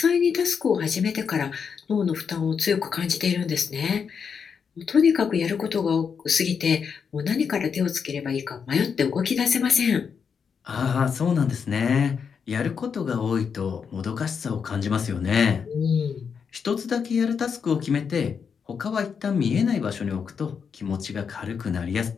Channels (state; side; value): quieter; right; 6.5 dB